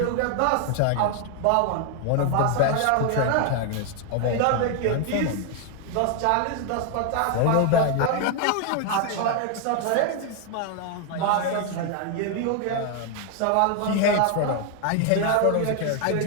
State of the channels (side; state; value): both; different; correlation 0.00